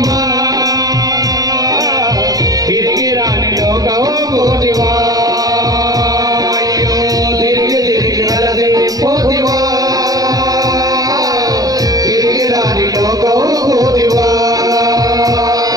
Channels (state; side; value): late; left; 0.18 ms